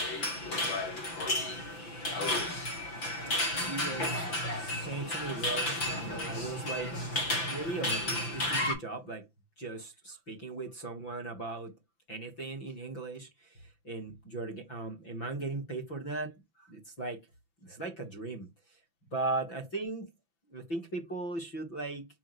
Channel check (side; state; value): right; late; 5.9 ms